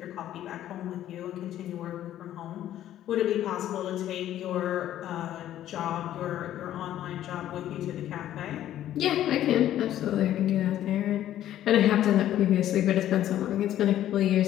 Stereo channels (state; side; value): quieter; right; 12.3 dB